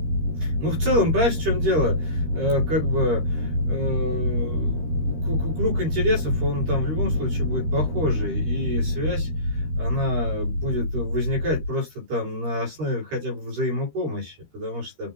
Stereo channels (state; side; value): late; left; 13 ms